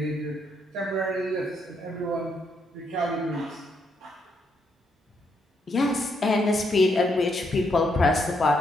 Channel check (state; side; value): normal; both; correlation 0.76